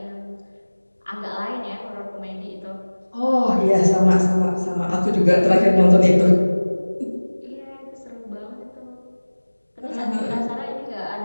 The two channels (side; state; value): both; inverted; correlation -1.00